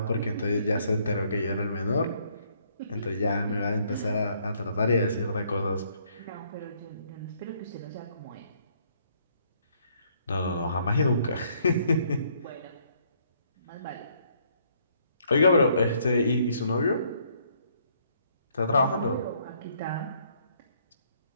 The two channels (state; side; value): inverted; both; correlation -0.67